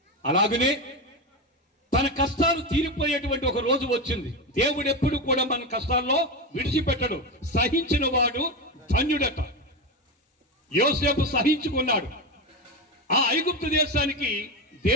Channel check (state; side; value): normal; both; correlation 0.17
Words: అలాగనే తన కష్టాలు తీరిపోయేటువంటి ఒక రోజు వచ్చింది. దేవుడు ఎప్పుడు కూడా మన కష్టాల్లో విడిచిపెట్టడు. సహించిన వాడు ధన్యుడట. యోసేపు సహించుకున్నాడు. ఆ ఐగుప్తు దేశానికి